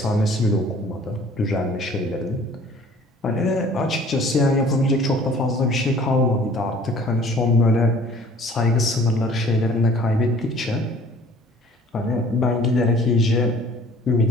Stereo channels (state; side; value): normal; both; correlation 0.51